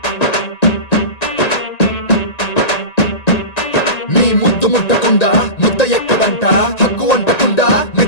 నీ ముద్దు ముట్టకుండా ముద్ద ఎక్కదంట హక్కు వంటకుండా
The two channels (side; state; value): right; late; 1.9 ms